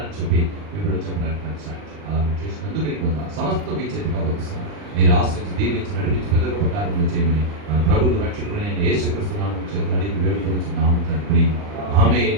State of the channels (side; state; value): left; late; 39 ms